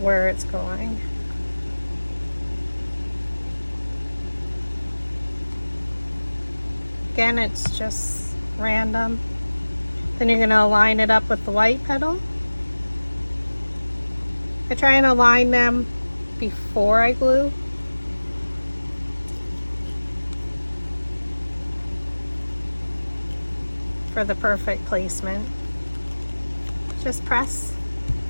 it's going. Again, it's just random. Then you're going to align it up with the white petal. I try and align them before I glue. For the perfect placement. Just press.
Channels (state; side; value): inverted; both; correlation -1.00